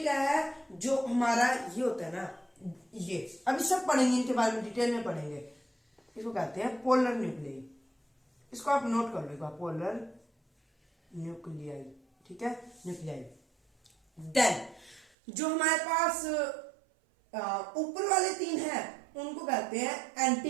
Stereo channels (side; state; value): left; drops out; at 15.1 s